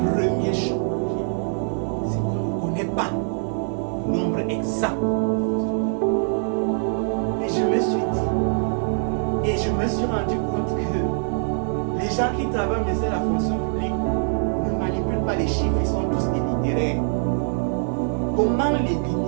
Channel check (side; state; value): left; silent; 63 dB below the other